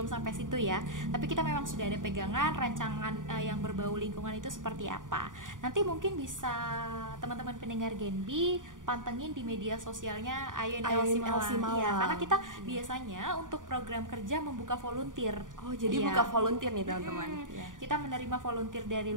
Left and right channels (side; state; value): left; late; 0.88 ms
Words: sampai situ ya. Tapi kita memang sudah ada pegangan rancangan yang berbau lingkungan itu seperti apa. Nanti mungkin bisa teman-teman pendengar Genbi pantengin di media sosialnya Ayoin LC Malang. Ya, karena kita biasanya untuk program kerja membuka volunteer. Oh, jadi buka volunteer nih teman-teman. Kita menerima volunteer dari